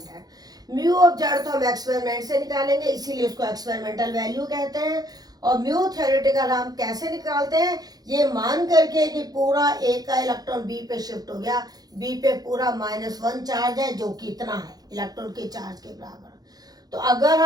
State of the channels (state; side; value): late; left; 0.19 ms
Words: Mu observed तो हम एक्सपेरिमेंट से निकालेंगे, इसीलिए उसको एक्सपेरिमेंटल वैल्यू कहते हैं। और म्यू थ्योरेटिकल हम कैसे निकालते हैं, ये मान करके कि पूरा A का इलेक्ट्रॉन B पे शिफ्ट हो गया, B पे पूरा -1 चार्ज है, जो कि इतना है इलेक्ट्रॉन के चार्ज के बराबर। तो अगर